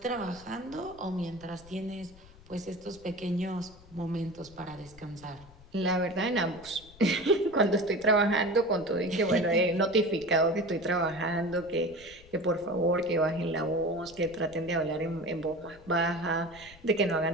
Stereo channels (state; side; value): noise; left; rumble, 22 dB below the sound